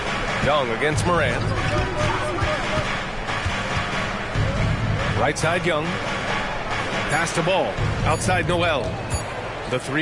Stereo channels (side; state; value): both; identical; correlation 1.00